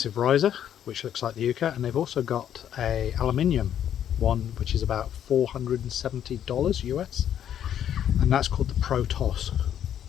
riser, which looks like the Yuka, and they've also got a aluminium one, which is about $470 US, and that's called the Pro Toss.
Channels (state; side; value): quieter; right; 10.0 dB